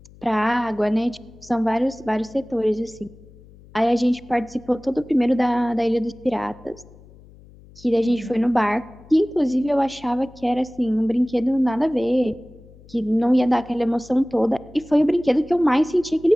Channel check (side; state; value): left; noise; hum, 23 dB below the sound